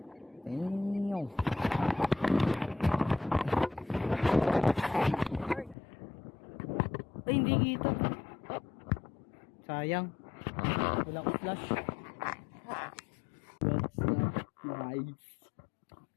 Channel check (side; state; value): right; drops out; at 5.8 s